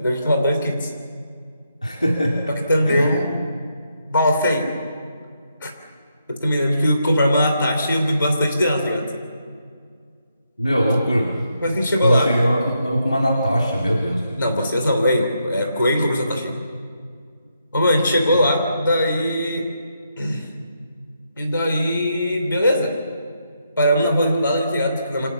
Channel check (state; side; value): inverted; both; correlation -0.80